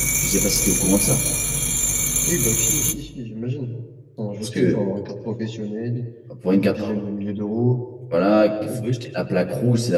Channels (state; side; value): identical; both; correlation 1.00